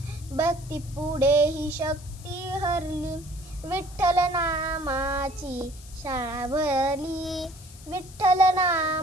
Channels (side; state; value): left; noise; hiss, 20 dB below the sound